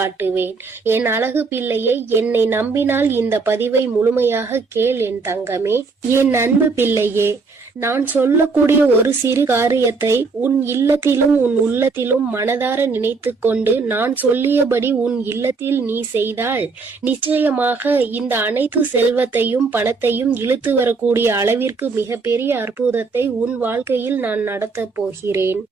என் அழகு பிள்ளையை, என்னை நம்பினால் இந்த பதிவை முழுமையாக கேள் என் தங்கமே. என் அன்பு பிள்ளையே, நான் சொல்லக்கூடிய ஒரு சிறு காரியத்தை உன் இல்லத்திலும் உன் உள்ளத்திலும் மனதார நினைத்து கொண்டு நான் சொல்லியபடி உன் இல்லத்தில் நீ செய்தால் நிச்சயமாக இந்த அனைத்து செல்வத்தையும் பணத்தையும் இழுத்து வரக்கூடிய அளவிற்கு மிகப்பெரிய அற்புதத்தை உன் வாழ்க்கையில் நான் நடத்த போகிறேன்.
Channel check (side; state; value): left; quieter; 4.4 dB